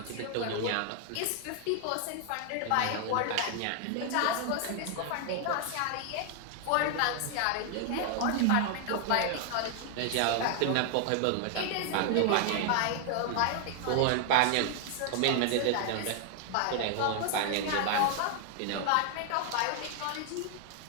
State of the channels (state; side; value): different; both; correlation 0.00